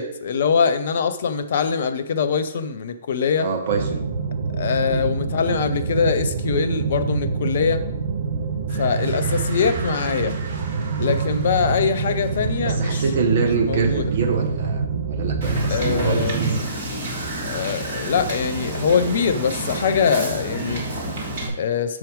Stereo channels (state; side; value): inverted; both; correlation -0.57